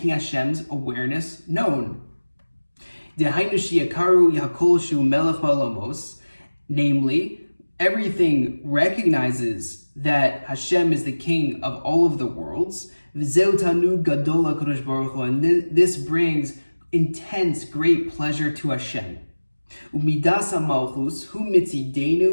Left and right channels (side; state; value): both; inverted; correlation -1.00